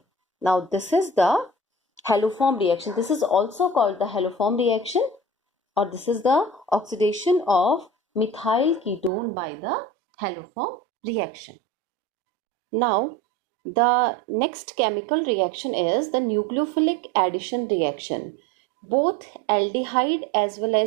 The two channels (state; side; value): drops out; left; at 9.1 s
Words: Now this is the haloform reaction. This is also called the haloform reaction, or this is the oxidation of methyl ketone by the haloform reaction. Now the next chemical reaction is the nucleophilic addition reaction. Both aldehyde as well